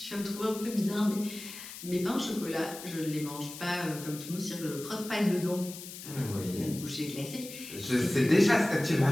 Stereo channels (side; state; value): left; noise; hiss, 12 dB below the sound